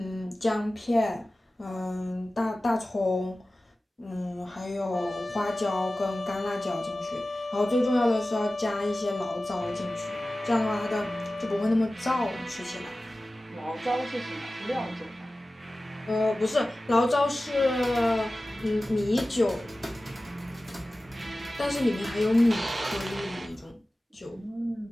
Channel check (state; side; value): normal; both; correlation 0.96